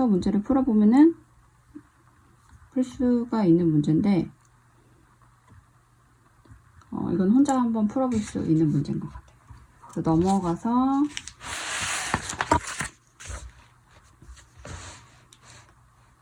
문제를 풀어보면은 풀 수가 있는 문제인데 이건 혼자 한번 풀어볼 수 있는 문제인 것 같아요. 그래서 넘어가서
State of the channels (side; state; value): both; identical; correlation 1.00